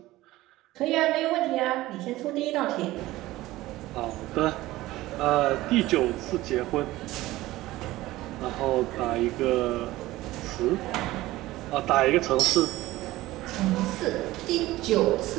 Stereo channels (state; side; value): quieter; left; 17.3 dB